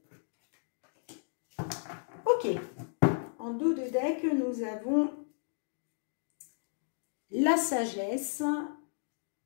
Ok. En dos de deck, nous avons la sagesse,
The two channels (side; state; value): right; silent; digital silence